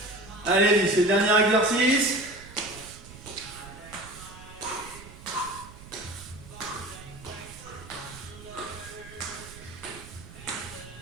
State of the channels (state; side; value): noise; right; rumble, 17 dB below the sound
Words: Allez-y, c'est le dernier exercice.